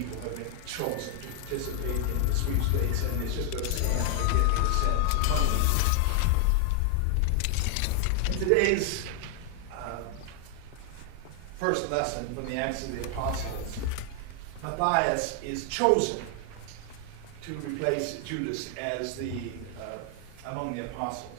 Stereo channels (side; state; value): both; different; correlation 0.00